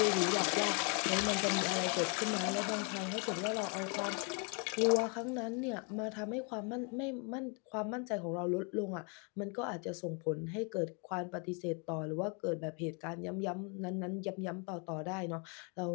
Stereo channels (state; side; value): quieter; right; 35.8 dB